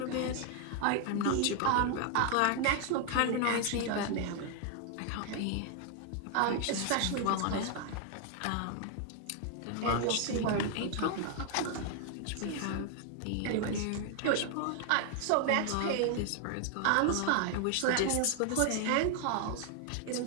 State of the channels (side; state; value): both; different; correlation 0.00